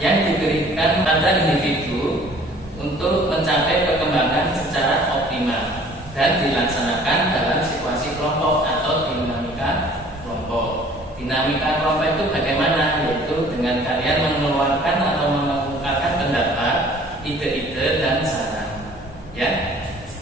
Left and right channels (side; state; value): both; normal; correlation 0.52